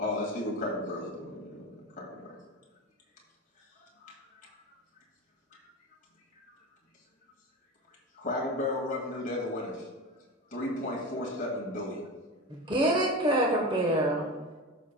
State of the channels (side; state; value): both; normal; correlation 0.25